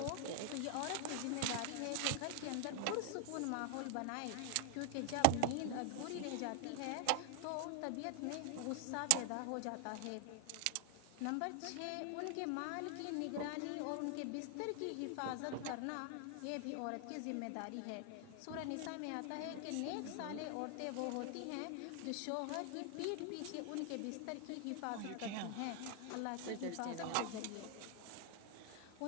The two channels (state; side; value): different; both; correlation 0.00